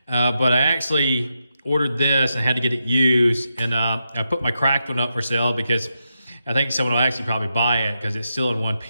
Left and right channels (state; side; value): inverted; both; correlation -0.86